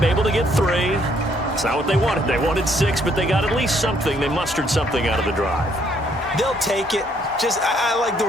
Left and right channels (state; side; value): normal; both; correlation 0.68